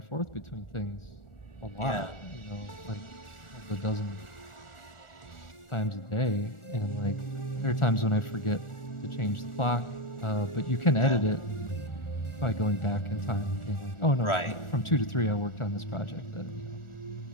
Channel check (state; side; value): late; right; 1.4 ms